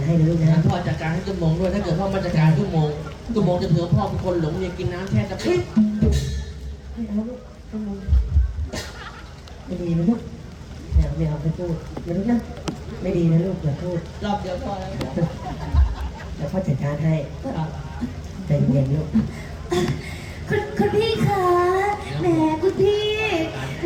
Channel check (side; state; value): both; identical; correlation 1.00